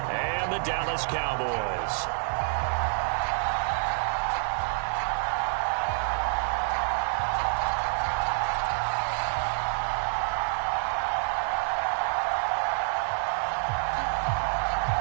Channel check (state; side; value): silent; left; 56 dB below the other